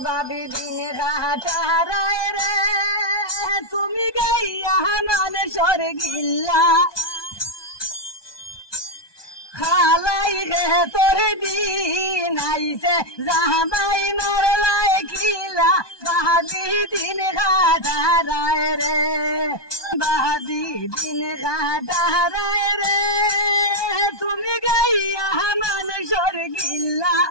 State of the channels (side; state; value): right; late; 1.2 ms